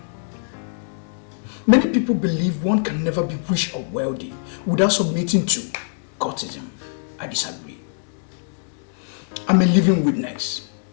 Many people believe one can never be rich or wealthy without submitting to cultism. I disagree. I'm a living witness.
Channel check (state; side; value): silent; right; digital silence